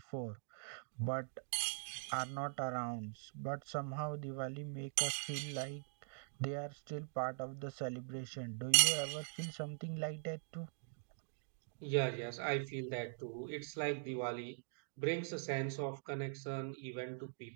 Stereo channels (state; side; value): silent; left; digital silence